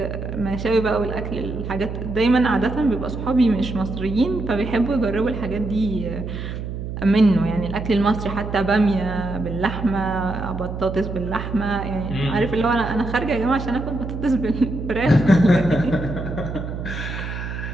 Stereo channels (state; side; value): noise; right; hum, 6 dB below the sound